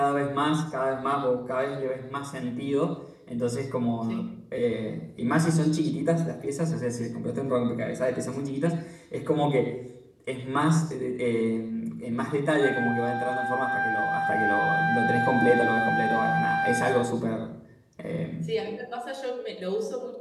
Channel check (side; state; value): both; identical; correlation 1.00